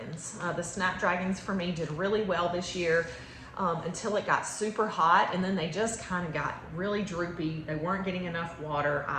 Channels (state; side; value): identical; both; correlation 1.00